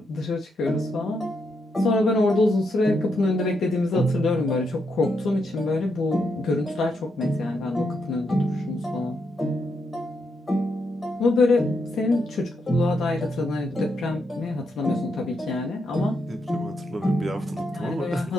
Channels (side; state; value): both; normal; correlation 0.81